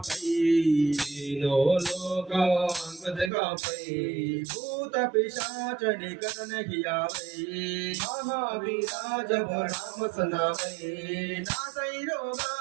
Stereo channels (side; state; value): left; drops out; at 3.3 s